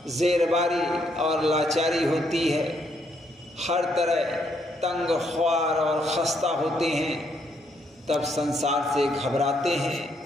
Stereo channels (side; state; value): both; normal; correlation 0.73